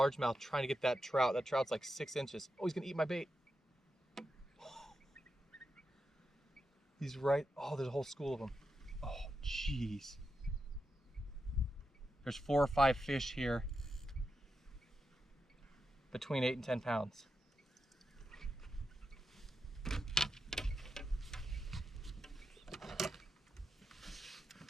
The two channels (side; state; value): both; normal; correlation 0.88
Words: trying to get that trout. That trout's like 6 inches. Oh, he's gonna eat my bait. He's right. Oh, there's a whole school of them. Oh, jeez. There's 4 or 5 fish here between 8 and 10 pounds.